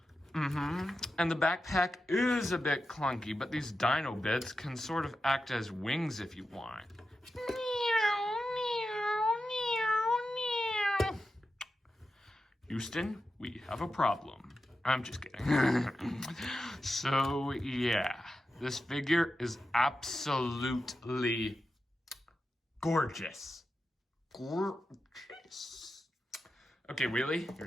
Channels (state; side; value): normal; both; correlation 0.90